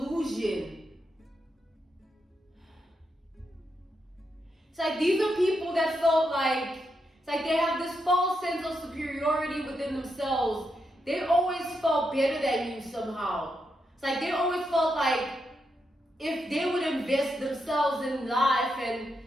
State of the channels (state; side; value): normal; both; correlation 0.83